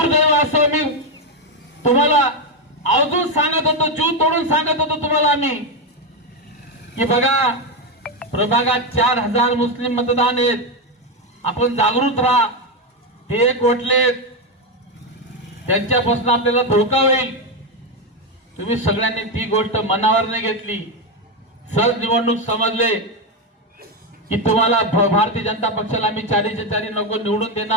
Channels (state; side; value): normal; both; correlation 0.08